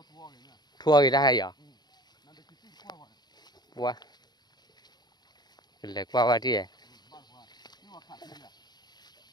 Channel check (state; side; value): late; right; 0.20 ms